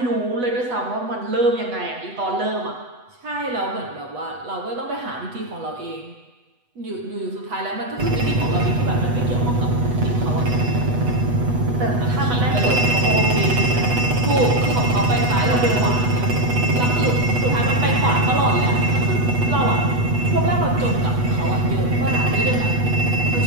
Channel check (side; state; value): left; late; 8.1 ms